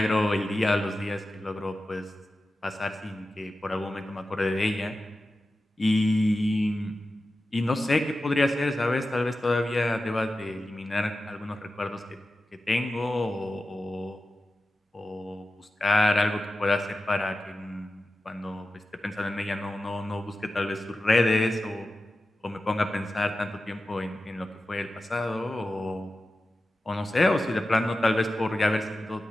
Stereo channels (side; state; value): both; normal; correlation 0.93